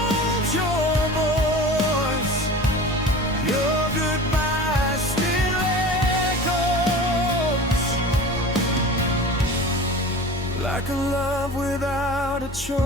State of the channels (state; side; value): normal; both; correlation 0.36